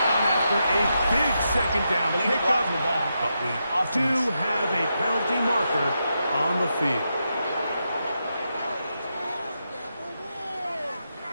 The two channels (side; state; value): both; inverted; correlation -0.85